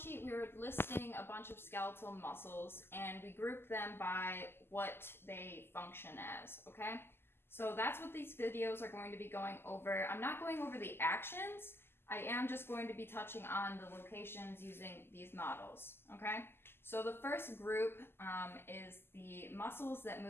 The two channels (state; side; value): late; right; 0.11 ms